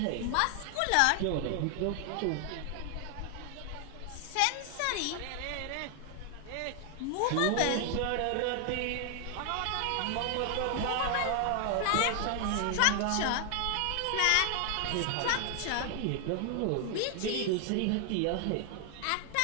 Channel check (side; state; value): both; different; correlation 0.00